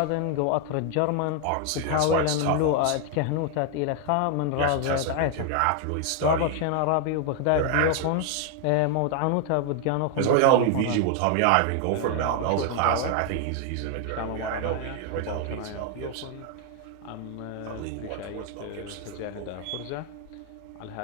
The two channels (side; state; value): both; different; correlation 0.00